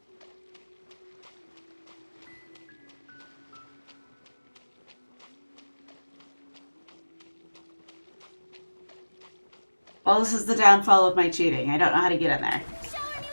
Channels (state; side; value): inverted; both; correlation -1.00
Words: Well, this is the downfall of my cheating. I don't know how to get in there.